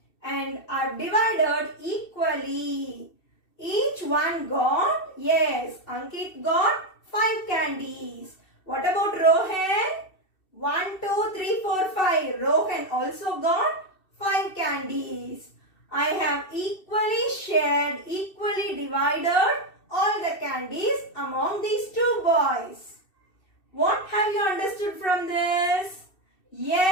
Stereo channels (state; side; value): late; right; 2.7 ms